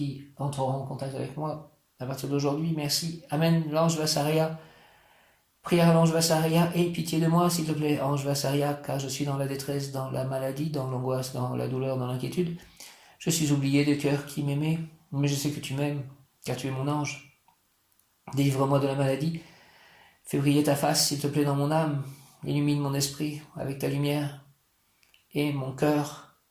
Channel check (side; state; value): both; identical; correlation 1.00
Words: entreront en contact avec moi à partir d'aujourd'hui. Merci. Amen. L'ange Vassaria. Prière à l'ange Vassaria. Aie pitié de moi, s'il te plaît, ange Vassaria, car je suis dans la détresse, dans la maladie, dans l'angoisse, dans la douleur, dans l'inquiétude. Je suis oublié de cœur qui m'aimait, mais je sais que tu m'aimes, car tu es mon ange. Délivre-moi de la maladie. Fais briller ta face, s'il te plaît, dans mon âme. Illumine mon esprit avec ta lumière et mon cœur